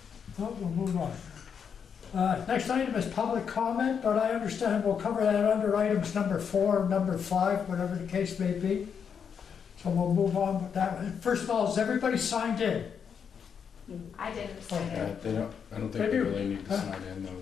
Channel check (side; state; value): right; quieter; 7.0 dB